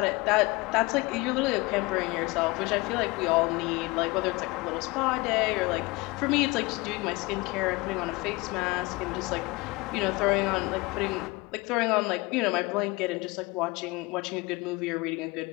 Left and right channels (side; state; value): right; quieter; 23.8 dB